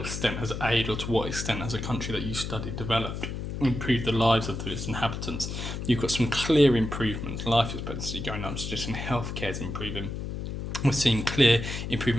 extent has aid, or to what extent has a country that you studied developed, improved the lives of its inhabitants? You've got some clear improvements. Life expectancy going up, suggesting healthcare is improving. We're seeing clear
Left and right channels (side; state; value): left; noise; hum, 5 dB below the sound